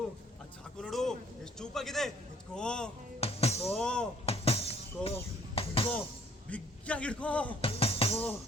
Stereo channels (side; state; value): both; normal; correlation 0.59